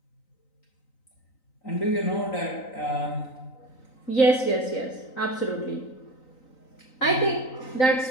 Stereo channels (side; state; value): right; late; 3.9 ms